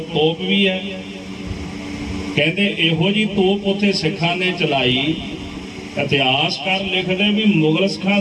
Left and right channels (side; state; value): both; identical; correlation 1.00